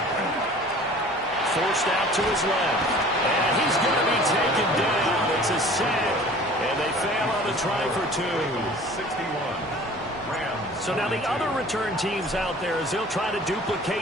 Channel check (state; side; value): normal; both; correlation 0.46